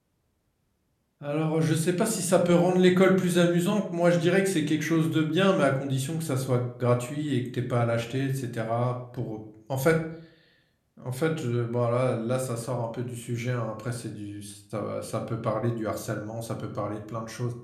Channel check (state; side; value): identical; both; correlation 1.00